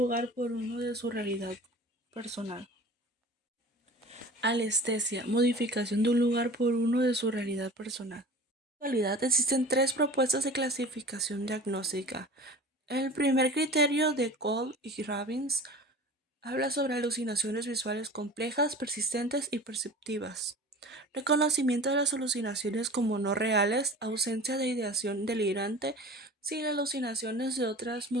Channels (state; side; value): normal; both; correlation 0.39